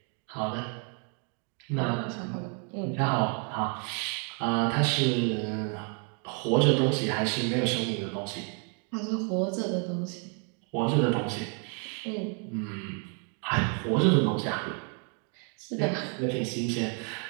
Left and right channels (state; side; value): quieter; left; 39.4 dB